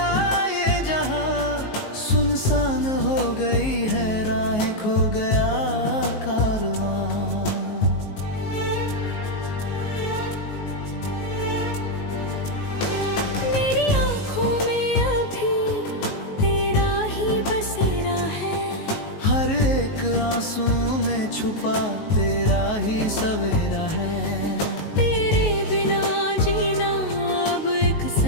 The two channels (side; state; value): right; late; 19 ms